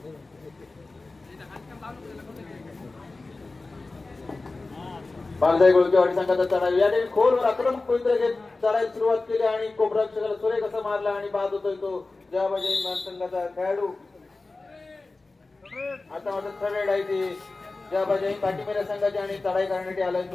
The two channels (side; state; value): right; quieter; 3.4 dB